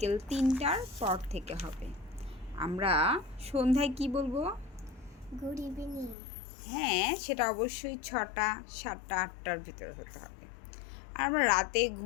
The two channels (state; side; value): drops out; right; at 6.2 s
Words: 3টার পর থেকে হবে। আমরা সন্ধ্যায় কি বলবো? Good evening. হ্যাঁ, সেটা অবশ্যই 6টা, 7টা, 8টার ভিতরে হতে হবে। আর আমরা রাতে